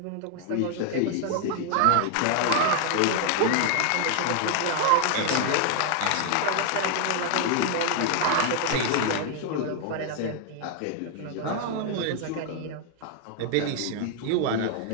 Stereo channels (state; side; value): different; both; correlation 0.00